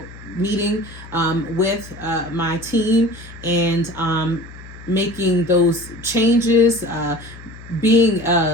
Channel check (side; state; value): left; noise; hum, 17 dB below the sound